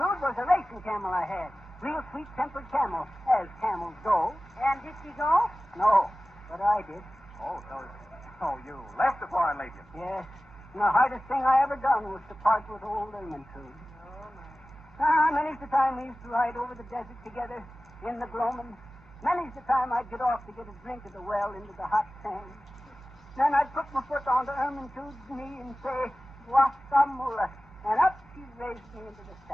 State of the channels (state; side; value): noise; right; hum, 23 dB below the sound